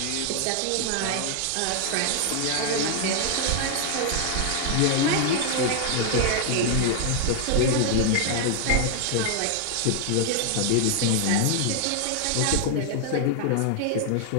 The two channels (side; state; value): both; different; correlation 0.00